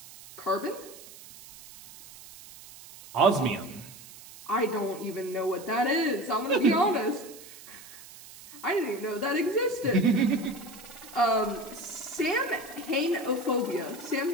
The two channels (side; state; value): right; noise; hiss, 18 dB below the sound